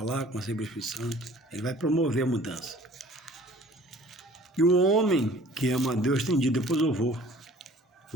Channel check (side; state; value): both; normal; correlation 0.50